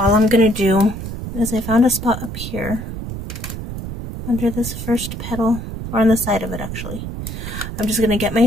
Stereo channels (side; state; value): right; noise; rumble, 7 dB below the sound